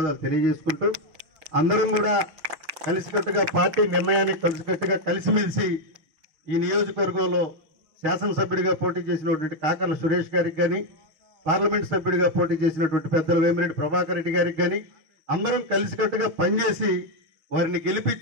తెలియజేసుకుంటూ, అందరం కూడా కలిసికట్టుగా పార్టీ నిర్ణయానికి కలిసికట్టుగా కలిసిమెలిసి ఈ నియోజకవర్గంలో శాసనసభ్యుడిగా పోటీ చేసినటువంటి కాకర్ల సురేష్ గారికి కానీ, పార్లమెంట్ సభ్యుడిగా పోటీ చేసినటువంటి పెద్దల వేమిరెడ్డి ప్రభాకర్ రెడ్డి గారికి కానీ అందరం కలిసికట్టుగా పనిచేసి వారిని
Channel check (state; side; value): late; left; 6.6 ms